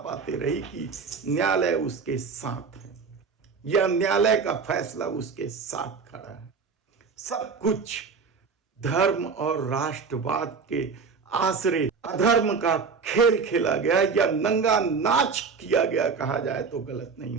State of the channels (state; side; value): quieter; left; 5.3 dB